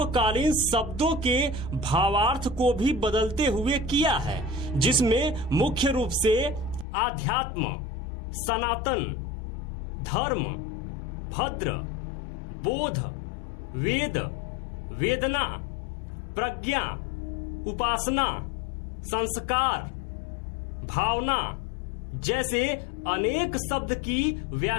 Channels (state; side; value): drops out; right; at 6.9 s